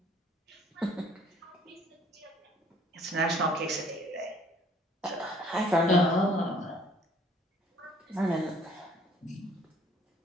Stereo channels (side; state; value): both; normal; correlation 0.58